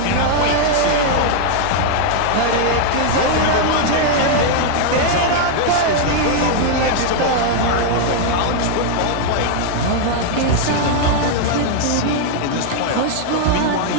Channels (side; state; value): both; different; correlation 0.00